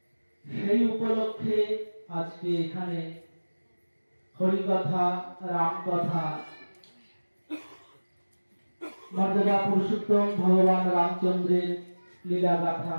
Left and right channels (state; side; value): inverted; both; correlation -1.00